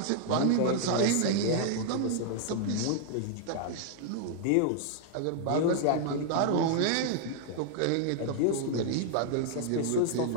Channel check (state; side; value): different; both; correlation 0.00